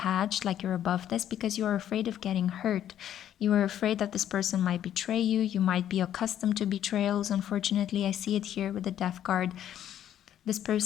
like you're above this, because you're afraid of getting hurt. You are afraid that this person might betray you. You might be accustomed to betrayals. Unfortunately, I see it here with the death card. This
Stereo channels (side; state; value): right; quieter; 10.8 dB